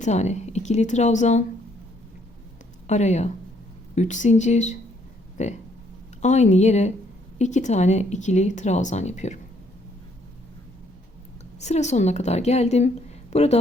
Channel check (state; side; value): normal; both; correlation 0.68